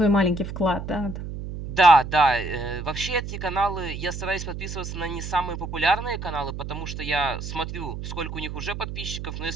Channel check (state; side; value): noise; right; hum, 7 dB below the sound